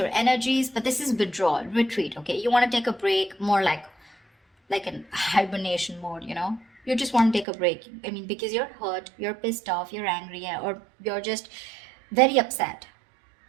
energies, but this is withdrawal, retreat. Okay, you want to take a break, more like an hibernation mode. You just want to take a break. I mean, because you're hurt, you're pissed off, you're angry, or you're just very upset,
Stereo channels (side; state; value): left; drops out; at 7.5 s